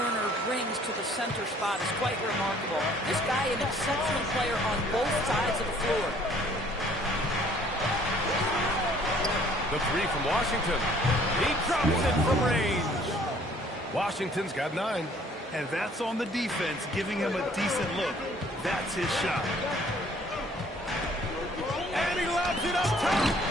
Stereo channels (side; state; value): both; normal; correlation 0.57